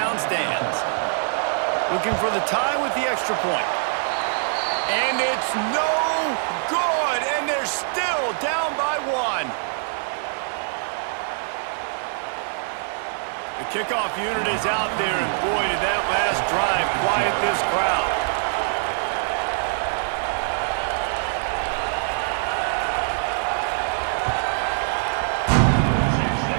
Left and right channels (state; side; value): silent; left; digital silence